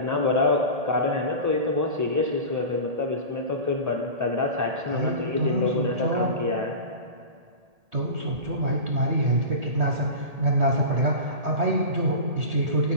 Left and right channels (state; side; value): late; left; 1.8 ms